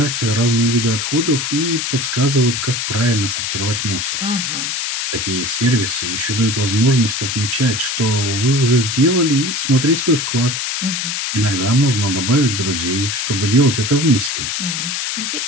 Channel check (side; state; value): left; noise; hiss, 2 dB below the sound